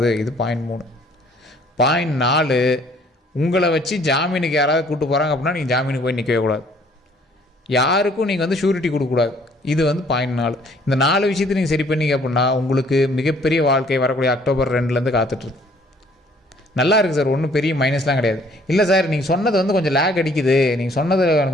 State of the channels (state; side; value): normal; both; correlation 0.59